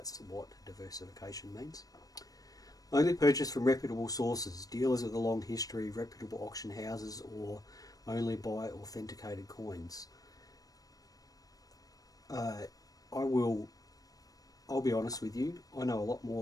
what diversification means. Only purchase from reputable sources, dealers with a long history, reputable auction houses, or only buy authenticated coins. I'll be honest with you, I know a lot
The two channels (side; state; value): right; late; 0.18 ms